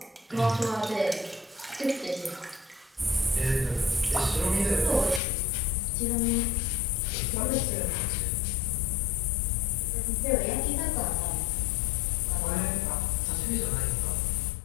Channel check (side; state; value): right; drops out; at 5.2 s